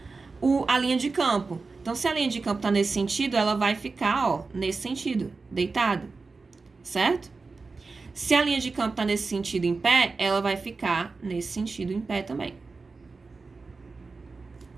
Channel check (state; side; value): quieter; left; 4.1 dB